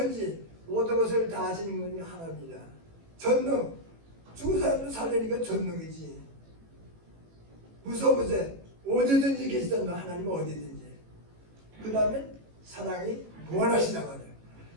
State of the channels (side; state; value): left; late; 18 ms